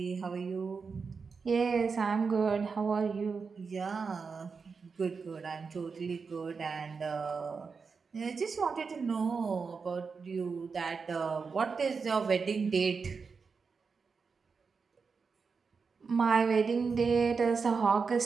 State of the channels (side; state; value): left; quieter; 5.2 dB